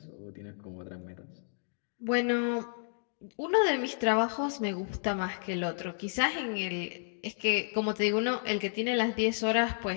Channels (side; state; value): right; silent; digital silence